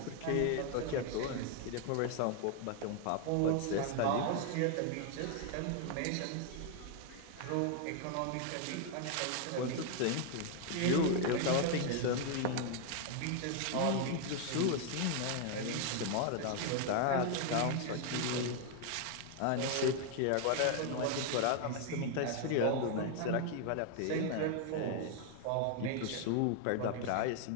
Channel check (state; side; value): different; both; correlation 0.00